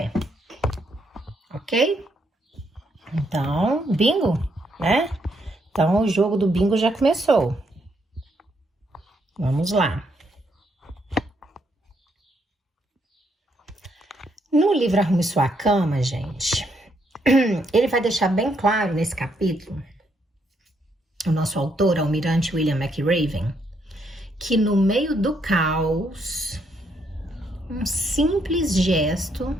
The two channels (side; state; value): both; normal; correlation 0.74